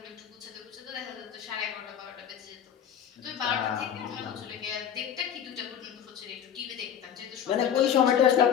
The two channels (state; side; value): quieter; right; 9.0 dB